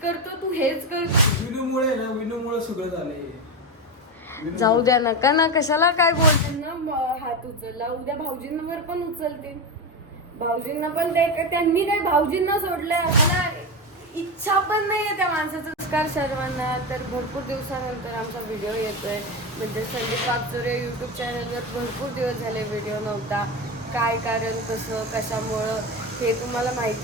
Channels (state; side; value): normal; both; correlation 0.16